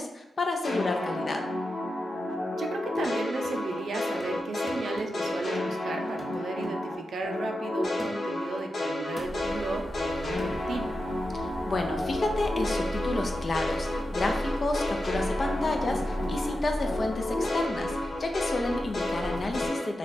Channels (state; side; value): normal; both; correlation 0.90